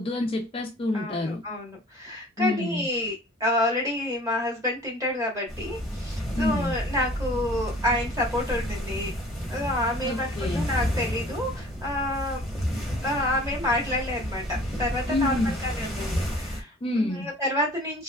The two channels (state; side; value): normal; both; correlation 0.49